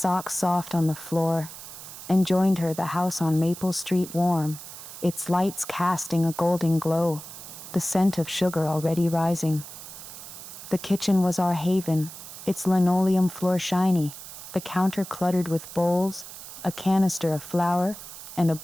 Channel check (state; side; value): noise; right; hiss, 13 dB below the sound